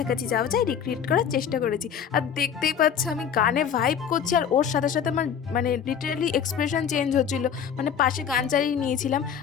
যাওয়া যায় রিক্রিয়েট করার চেষ্টা করেছি। আর দেখতেই পাচ্ছ আমি গানে ভাইব করছি, আর ওর সাথে সাথে আমার মানে লিটারালি এক্সপ্রেশন চেঞ্জ হচ্ছিল। মানে পাশে গান চালিয়ে নিয়েছিলাম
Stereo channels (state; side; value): quieter; right; 8.0 dB